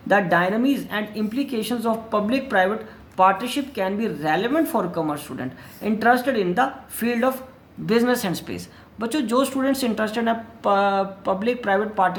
The dynamics and implications of public-private partnership can be relevant for commerce student interested in the field of business and space। बच्चों, जो students interested हैं public private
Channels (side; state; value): both; identical; correlation 1.00